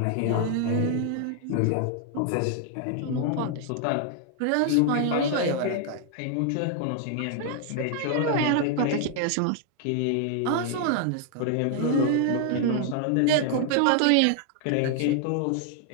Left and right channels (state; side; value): different; both; correlation 0.00